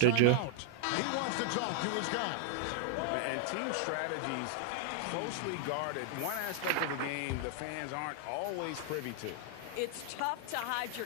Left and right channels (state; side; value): different; both; correlation 0.00